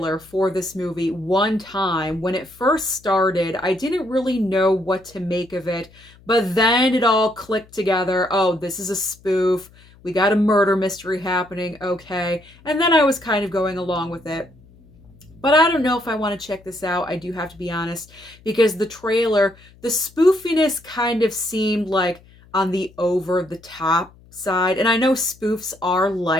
for this movie one time. When it first started, I didn't really know what to make of it, but then it all clicked together. Oh, this is a spoof. We got a murder mystery happening, okay. And then I was kind of going along with it. But I don't know if I want to check this out, I do have to be honest, because the trailer, the spoofiness kind of seemed like on the over-the-top side. And I know spoofs are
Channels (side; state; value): left; noise; hum, 26 dB below the sound